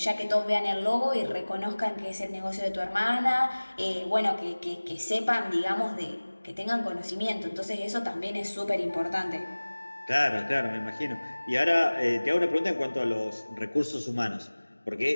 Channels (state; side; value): inverted; both; correlation -1.00